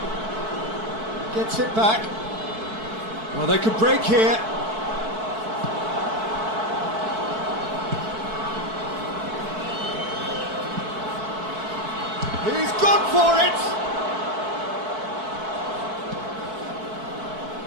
Gets it back. Well, they could break here. He's gone for it.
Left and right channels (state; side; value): late; left; 4.6 ms